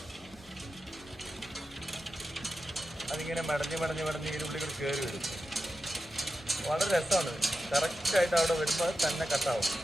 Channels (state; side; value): normal; both; correlation 0.90